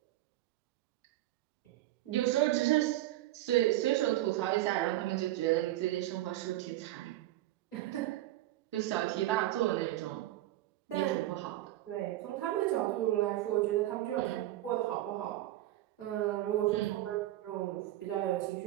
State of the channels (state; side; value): quieter; left; 15.2 dB